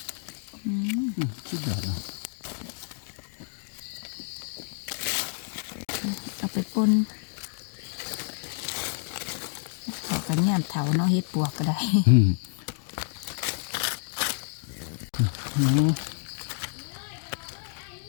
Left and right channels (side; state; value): right; silent; 59 dB below the other